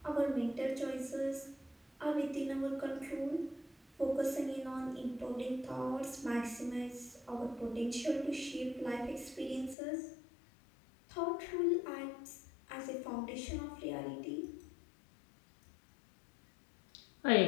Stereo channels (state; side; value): drops out; right; at 9.8 s